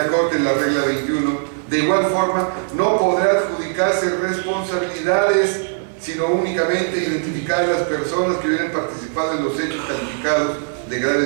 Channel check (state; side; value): silent; left; 60 dB below the other